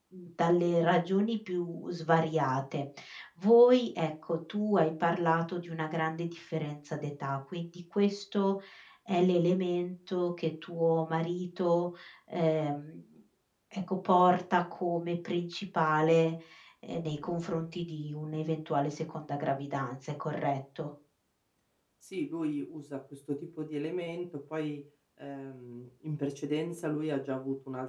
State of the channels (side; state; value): both; identical; correlation 1.00